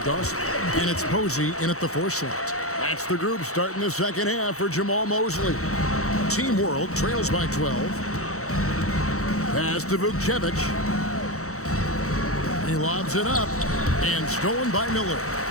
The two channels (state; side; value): late; right; 0.64 ms